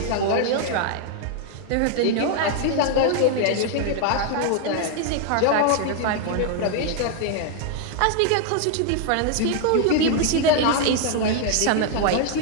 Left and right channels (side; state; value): both; different; correlation 0.00